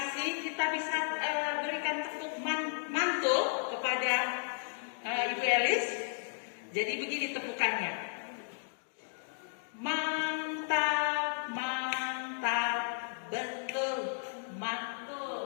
Kita bisa berikan tepuk mantul kepada Ibu Elis. Jadi begini tepukannya. Mantap, mantap, betul,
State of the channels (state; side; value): silent; right; digital silence